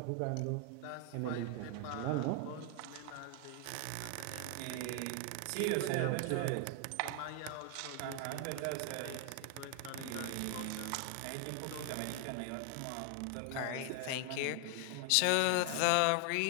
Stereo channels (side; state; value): both; different; correlation 0.00